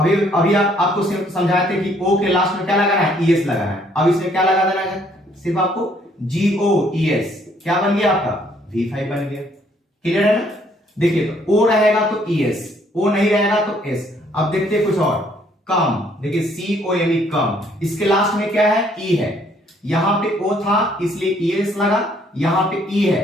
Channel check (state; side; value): normal; both; correlation 0.65